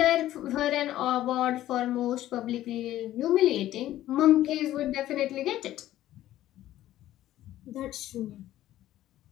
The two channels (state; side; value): quieter; right; 13.8 dB